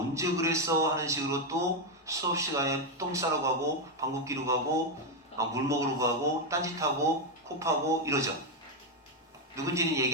그랬어 하는 식으로 또 수업 시간에 똥 싸러 가고 방귀 끼러 가고 물 먹으러 가고 딴짓하고 코 파고 이러죠. 누군지는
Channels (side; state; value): both; normal; correlation 0.05